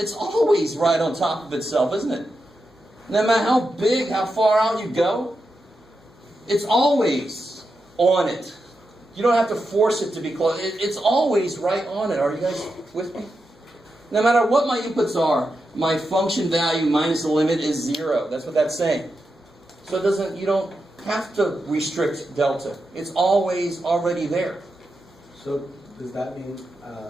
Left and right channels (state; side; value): normal; both; correlation 0.88